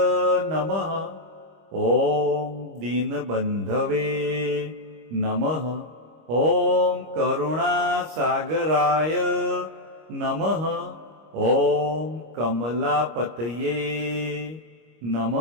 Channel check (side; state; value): left; late; 25 ms